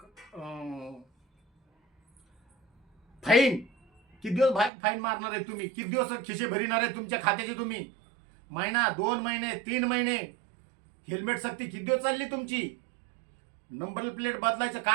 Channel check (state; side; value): drops out; left; at 4.7 s